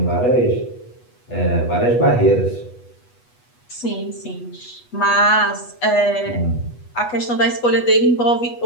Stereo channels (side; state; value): right; late; 8.2 ms